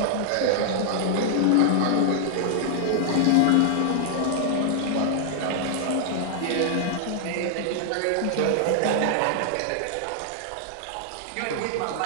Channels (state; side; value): different; both; correlation -0.01